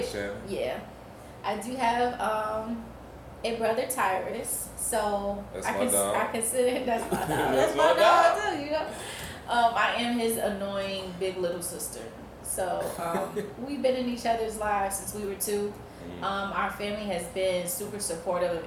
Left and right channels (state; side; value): identical; both; correlation 1.00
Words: Yeah. I do have a brother, Tyrus. So I consider that's my dog. That's my dog too, you know. I am his annoying big little sister. So we've been in each other's lives since we were 2. Our family has been super supportive of